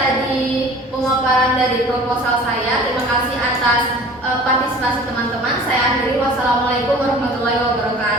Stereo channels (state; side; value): normal; both; correlation 0.45